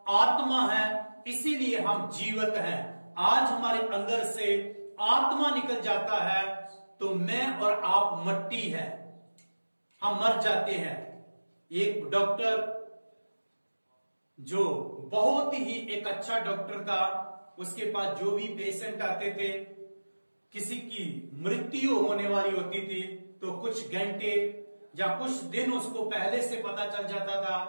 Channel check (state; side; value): inverted; both; correlation -1.00